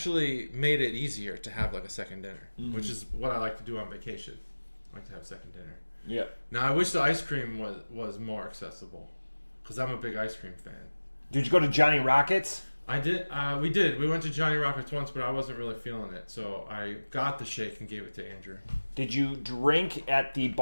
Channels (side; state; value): both; inverted; correlation -1.00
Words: made it easier to have like a second dinner, which is what I like to do on vacation. I like to have second dinner. Yeah. Now I wish the ice cream was more accessible, because I'm a big ice cream fan. Did you go to Johnny Rockets? I did. We did. We went to Johnny Rockets once, but I wasn't really feeling it, so I got the shake and gave it to Andrew. Did you drink at the